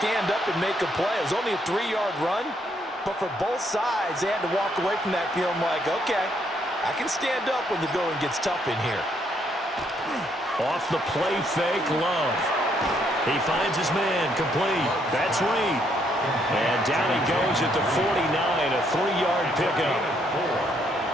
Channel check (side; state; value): both; normal; correlation 0.72